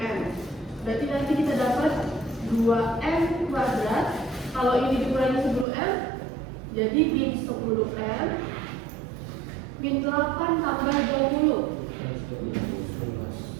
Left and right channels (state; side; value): drops out; left; at 5.7 s